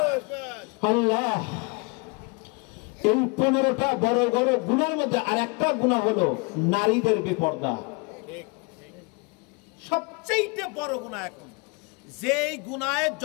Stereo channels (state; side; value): quieter; right; 30.4 dB